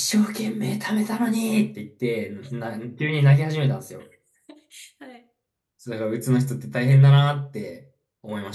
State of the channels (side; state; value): both; identical; correlation 1.00